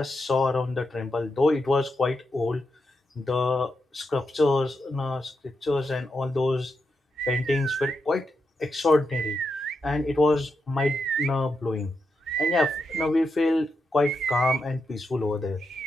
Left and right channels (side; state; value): both; normal; correlation 0.85